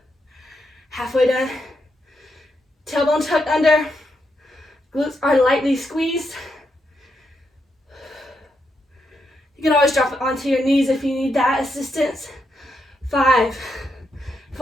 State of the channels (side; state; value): both; normal; correlation 0.81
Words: Halfway done. Tailbone tucked under. Glutes are lightly squeezed. You can always drop it onto your knees if you need that assistance. 5,